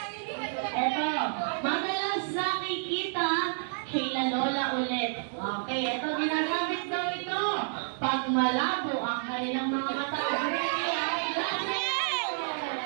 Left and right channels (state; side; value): silent; left; 58 dB below the other